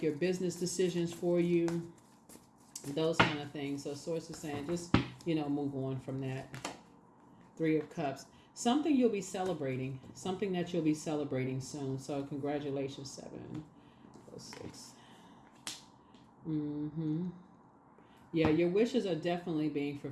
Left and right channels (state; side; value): identical; both; correlation 1.00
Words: your business decisions for you. Those kind of things. So Source is saying just, move on from that. Three of Cups. Something you'll be celebrating. Something that you'll be celebrating soon. So congratulations, 7. 6. Yeah, your wishes are definitely being